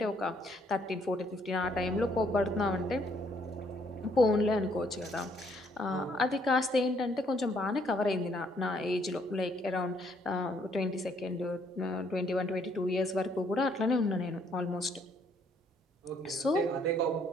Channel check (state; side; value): normal; both; correlation 0.67